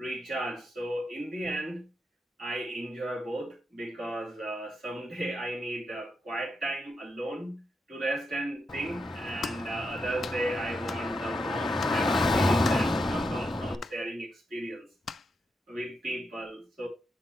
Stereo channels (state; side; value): normal; both; correlation 0.84